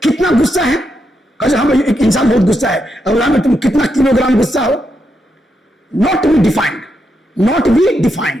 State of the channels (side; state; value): both; normal; correlation 0.83